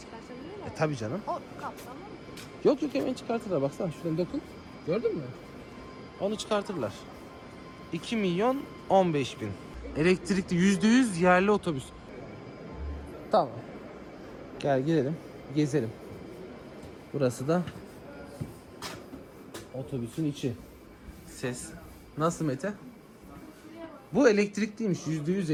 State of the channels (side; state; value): both; identical; correlation 1.00